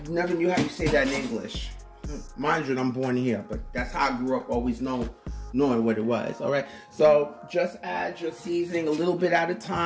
never knew how you say that in English. Mind you, I'm born here, but that's how I grew up, always knowing what it was. All right, so just add your seasoning a little bit at a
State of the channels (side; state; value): both; identical; correlation 1.00